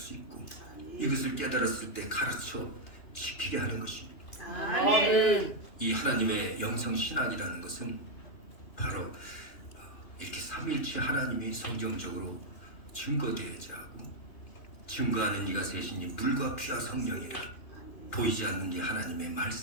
있고, 이것을 깨달았을 때 가르쳐 지키게 하는 것입니다. 아멘. 이 하나님의 영성신학이라는 것은 바로 이렇게 삼위일체 하나님이 성경적으로 증거되어야지 하고, 증거하는 이가 셋이니 물과 피와 성령이라, 보이지 않는 이 하나님의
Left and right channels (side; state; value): right; late; 2.9 ms